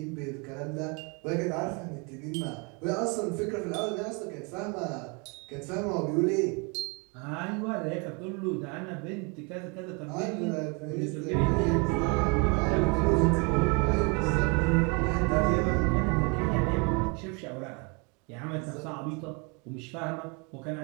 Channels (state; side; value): quieter; left; 32.0 dB